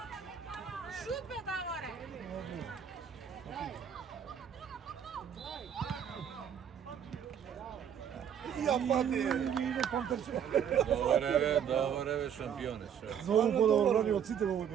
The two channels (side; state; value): left; quieter; 8.5 dB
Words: Шут бе, Даворе! Ја пати! Иде Пантерче. Добре бе, шампионе. За ово подобро брани од сите во